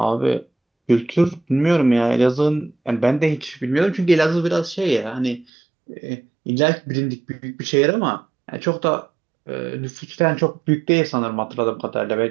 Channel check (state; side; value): drops out; left; at 5.5 s